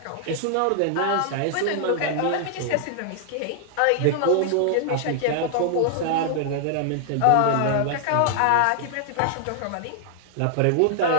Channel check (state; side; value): different; both; correlation 0.00